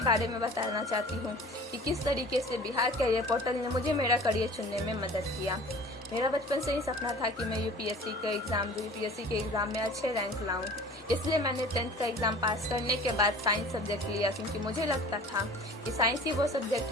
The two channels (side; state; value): both; normal; correlation 0.44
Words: बारे में बताना चाहती हूँ कि किस तरीके से बिहार कैरियर पोर्टल ने मुझे मेरा करियर चुनने में मदद किया। मेरा बचपन से ही सपना था कि मैं यूपीएससी के एग्ज़ाम में अच्छे रैंक लाऊं। इसलिए मैंने 10th का एग्ज़ाम पास करने के बाद साइंस सब्जेक्ट लिया, क्योंकि मुझे लगता था कि साइंस ही वो सब्जेक्ट